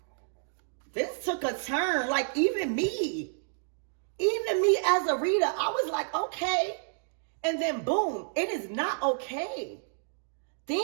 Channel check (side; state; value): left; silent; digital silence